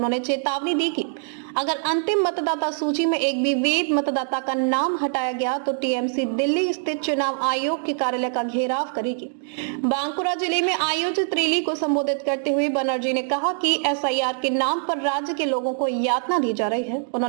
चेतावनी दी कि अगर अंतिम मतदाता सूची में एक भी वैध मतदाता का नाम हटाया गया तो टीएमसी दिल्ली स्थित चुनाव आयोग के कार्यालय का घेराव करेगी। बांकुरा जिले में आयोजित रैली को संबोधित करते हुए बनर्जी ने कहा कि एसआईआर के नाम पर राज्य के लोगों को यातना दी जा रही है।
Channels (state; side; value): silent; left; 63 dB below the other